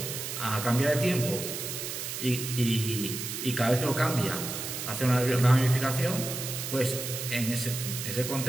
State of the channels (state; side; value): noise; right; hiss, 5 dB below the sound